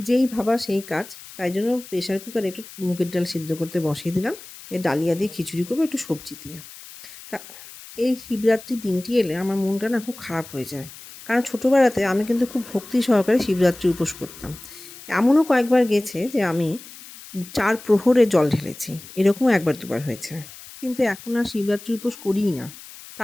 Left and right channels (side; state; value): left; noise; hiss, 17 dB below the sound